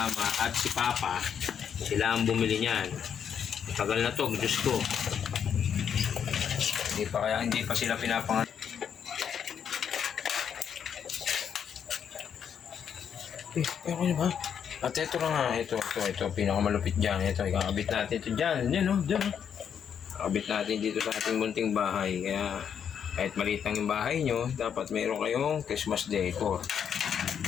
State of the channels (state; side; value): quieter; right; 8.0 dB